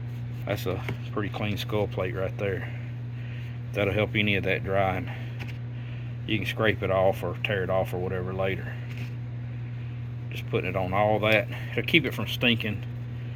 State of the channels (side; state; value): both; identical; correlation 1.00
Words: that's a pretty clean skull plate right there. That'll help any of that drying. You can scrape it off or tear it off or whatever later. Just putting it on all that, it'll keep it from stinking,